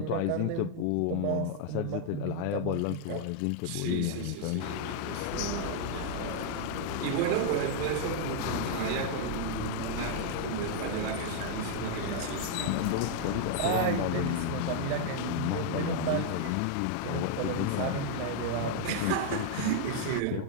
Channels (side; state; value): both; different; correlation 0.00